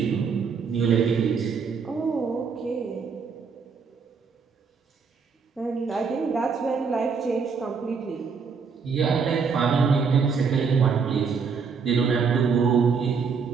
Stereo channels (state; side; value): quieter; left; 5.6 dB